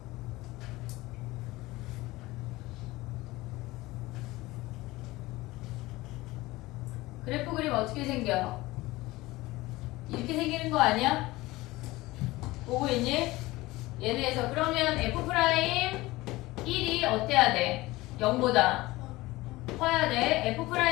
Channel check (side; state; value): right; quieter; 19.6 dB